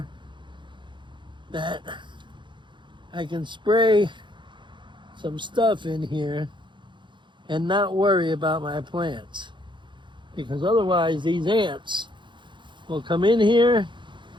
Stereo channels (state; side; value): late; left; 0.23 ms